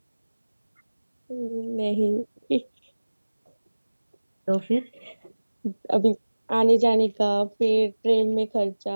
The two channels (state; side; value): inverted; both; correlation -1.00